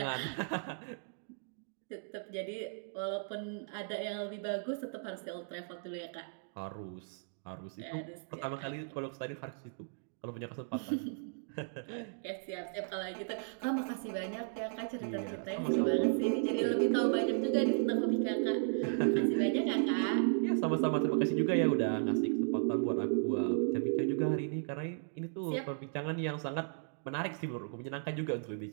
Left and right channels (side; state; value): left; silent; digital silence